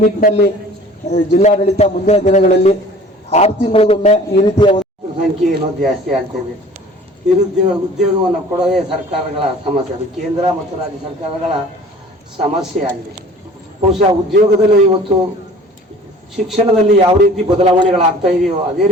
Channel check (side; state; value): both; normal; correlation 0.47